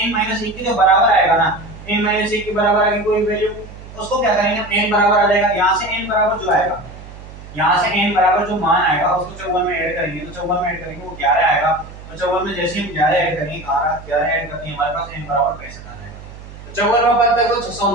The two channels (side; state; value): right; noise; hum, 16 dB below the sound